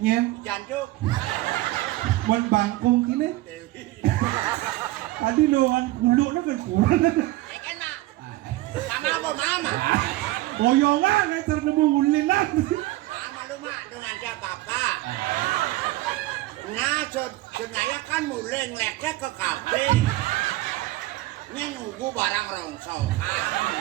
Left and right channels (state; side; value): quieter; left; 17.9 dB